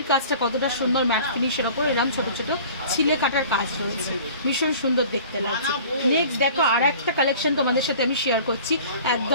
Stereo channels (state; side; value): inverted; both; correlation -0.45